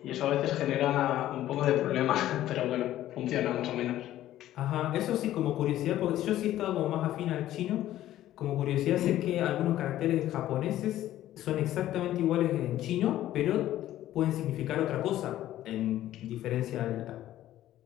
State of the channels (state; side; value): quieter; right; 13.5 dB